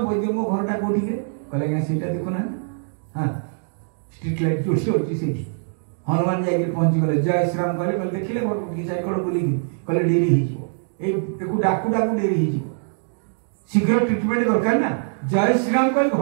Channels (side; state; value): left; silent; digital silence